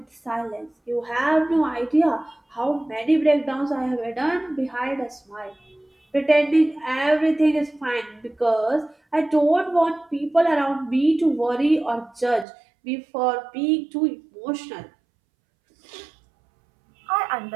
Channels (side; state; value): left; drops out; at 12.5 s